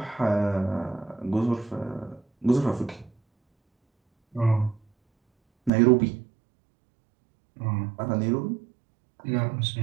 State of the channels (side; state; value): left; drops out; at 5.7 s